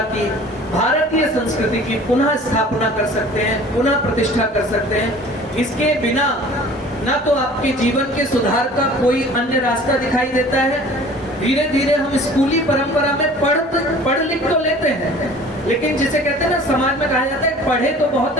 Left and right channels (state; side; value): normal; both; correlation 0.46